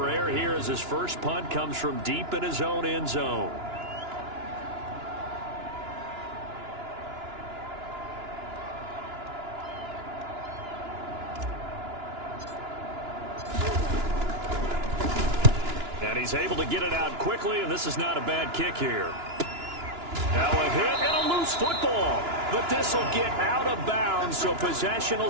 error here as his first punt comes from deep in his own end zone. And he's able to get it out quickly, and this is not a bad kick here. Now a hit and a loose football. But this will get out of bounds, so possession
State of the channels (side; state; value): left; late; 2.9 ms